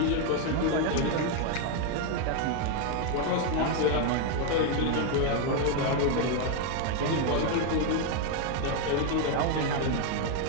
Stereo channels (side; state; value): both; different; correlation 0.01